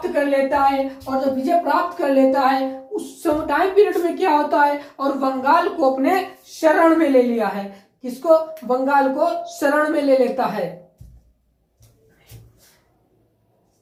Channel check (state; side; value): identical; both; correlation 1.00